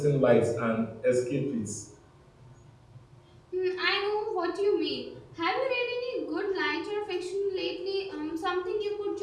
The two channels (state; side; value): identical; both; correlation 1.00